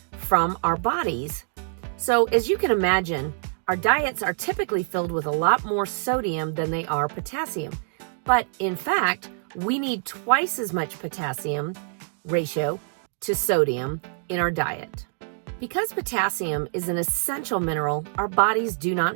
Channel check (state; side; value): silent; left; digital silence